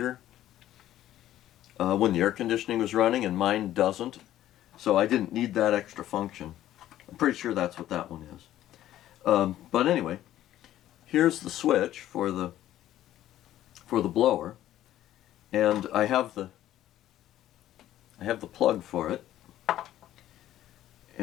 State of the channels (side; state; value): right; quieter; 13.0 dB